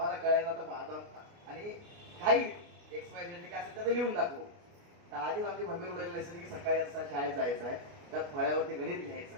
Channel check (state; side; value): late; left; 29 ms